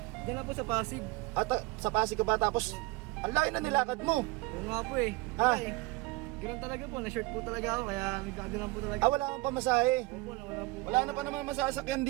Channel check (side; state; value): left; quieter; 22.4 dB